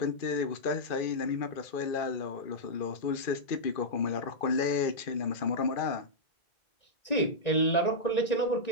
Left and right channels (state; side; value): late; right; 2.5 ms